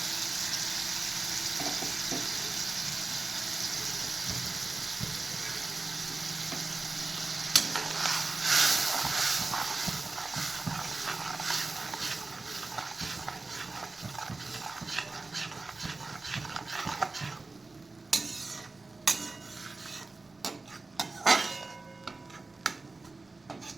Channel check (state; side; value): quieter; left; 3.5 dB